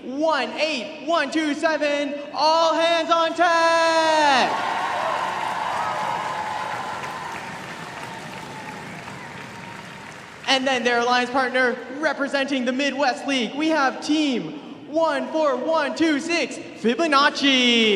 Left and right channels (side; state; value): both; identical; correlation 1.00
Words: 18127, all hands on tag. And then their alliance partner representing the Midwest League, we have team 14126,